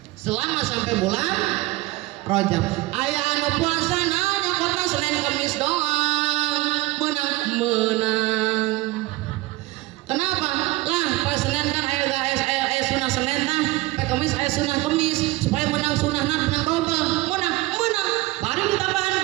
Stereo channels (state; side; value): quieter; left; 19.5 dB